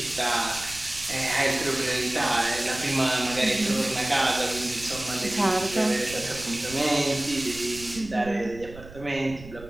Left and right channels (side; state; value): right; noise; rumble, 16 dB below the sound